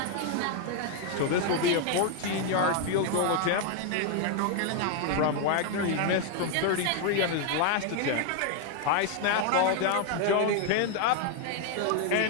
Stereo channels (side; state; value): both; different; correlation 0.00